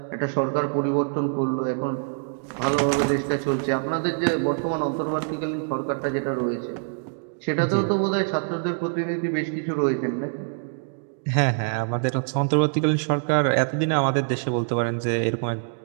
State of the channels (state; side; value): silent; left; digital silence